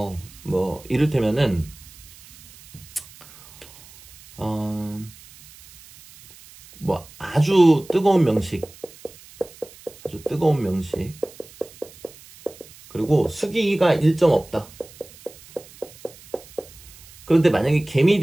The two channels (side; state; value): right; noise; hiss, 22 dB below the sound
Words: 뭐 이를테면은 뭐 아주 뜨거운 명식, 그리고 수기가 일정 없다. 그런데 만약에